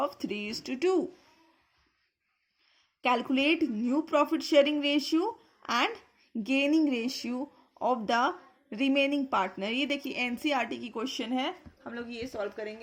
3:2. Calculate new profit sharing ratio and gaining ratio of the remaining partner. ये देखिए NCERT की question है, हम लोग ये solve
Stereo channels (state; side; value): identical; both; correlation 1.00